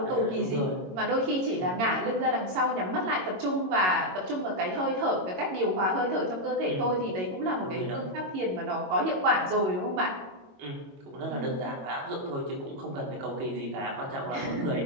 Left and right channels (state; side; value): late; left; 22 ms